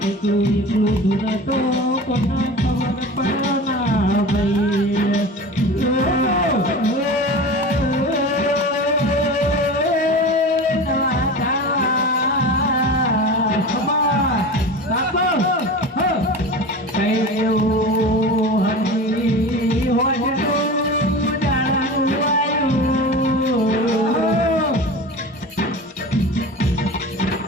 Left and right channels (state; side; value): normal; both; correlation 0.32